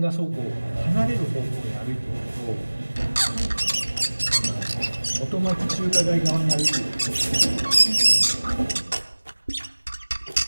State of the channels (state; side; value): inverted; both; correlation -1.00